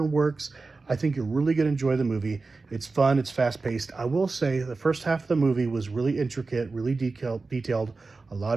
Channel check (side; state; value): left; quieter; 3.9 dB